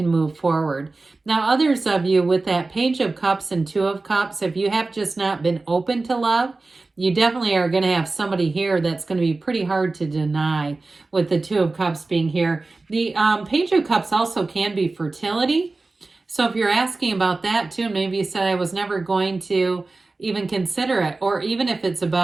move forward. Now, others of you with that Page of Cups and Two of Cups, if you have just not been open to love, you definitely are going to have somebody here that's going to be pretty hard to deny with the Two of Cups being here. The Page of Cups also can be fertility. So if you're asking about that too, maybe you said I was never going to even consider it, or even if it's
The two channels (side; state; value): left; quieter; 3.5 dB